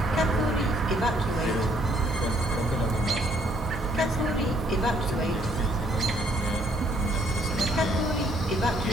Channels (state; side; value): normal; both; correlation 0.67